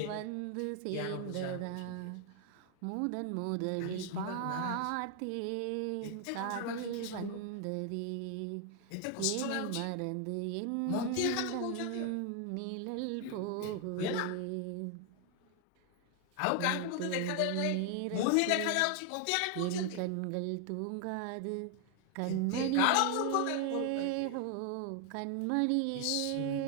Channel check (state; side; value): different; both; correlation 0.00